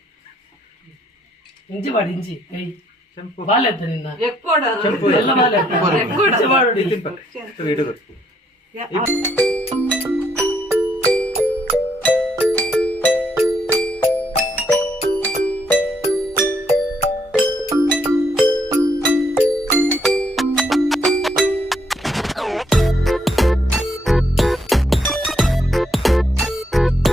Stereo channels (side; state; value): both; normal; correlation 0.71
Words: ಇಂಚಿ ಮಾಡಿ ಇಂಚಿ ಕೈ ಬಾಲ್ ಎತ್ತ ನಿನ್ನ ಎಕ್ಕೋಡ ಎಲ್ಲ ಬಾಲ್ ಎತ್ತ ಮಾಡಿ